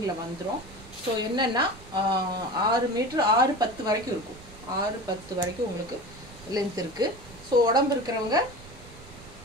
வந்துடும். ஸோ என்னென்னா 6 மீட்ரு 6-10 வரைக்கும் இருக்கும். 6-10 வரைக்கும் உங்களுக்கு லென்த் இருக்குது. ஸோ உடம்பு இருக்கிறவங்க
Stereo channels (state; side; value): noise; right; rumble, 20 dB below the sound